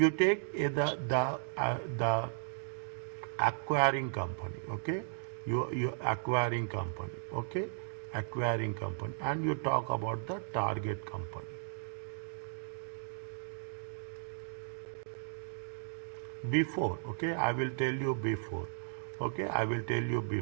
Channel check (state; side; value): silent; left; digital silence